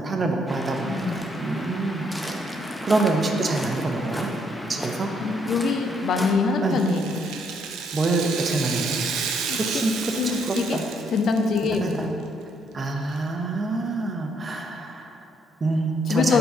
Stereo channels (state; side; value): normal; both; correlation 0.71